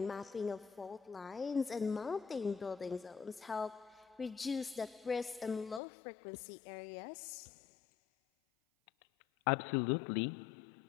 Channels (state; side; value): drops out; right; at 5.8 s